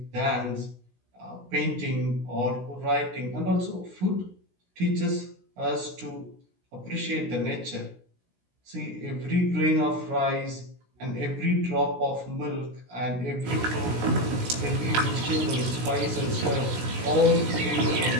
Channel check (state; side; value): late; left; 16 ms